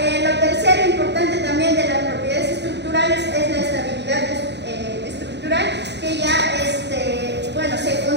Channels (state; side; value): late; left; 0.50 ms